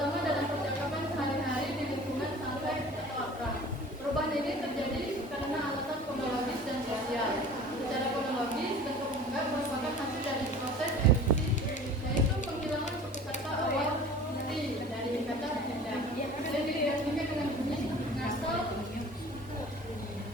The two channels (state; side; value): normal; both; correlation 0.43